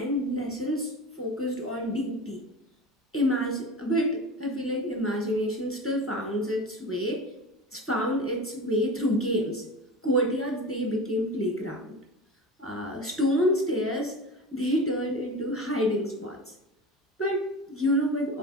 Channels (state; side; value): normal; both; correlation 0.30